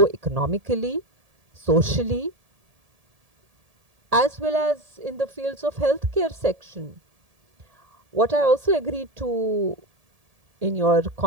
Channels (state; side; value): late; left; 1.7 ms